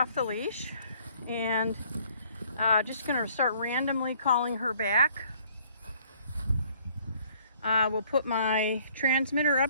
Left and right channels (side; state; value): both; inverted; correlation -0.60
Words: the leash, and just going to start randomly calling her back. We'll put my transmitter